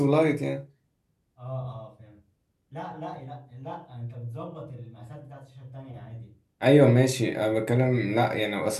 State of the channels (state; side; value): identical; both; correlation 1.00